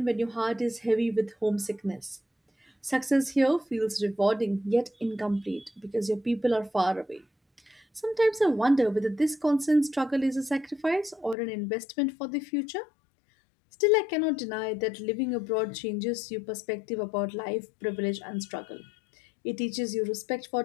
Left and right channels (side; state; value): right; drops out; at 11.4 s